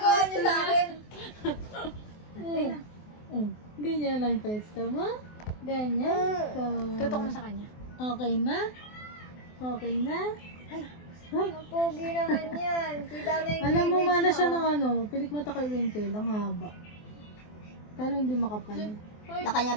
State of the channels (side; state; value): right; late; 24 ms